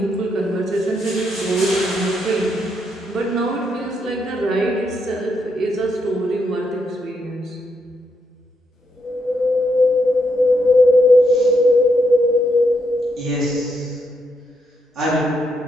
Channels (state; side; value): normal; both; correlation 0.79